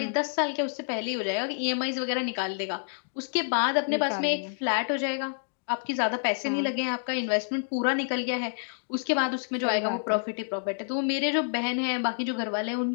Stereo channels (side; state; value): right; silent; digital silence